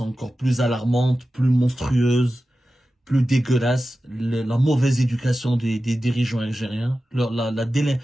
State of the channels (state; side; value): normal; both; correlation 0.94